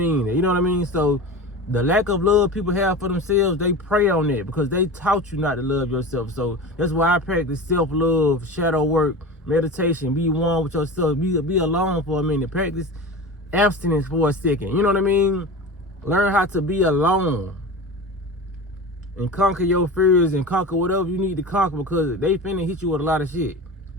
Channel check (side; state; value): both; normal; correlation 0.30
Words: it. You know what I mean? So the lack of love people have for themselves, they prey on it because they taught you not to love yourself. So that's why I practice self-love, shadow work, meditation, be one with yourself, be alone for a minute, practice abstinence for a second. You know what I mean? Learn how to be alone and conquer your fears and conquer whatever you need to conquer because they finna hit you with a lot of shit.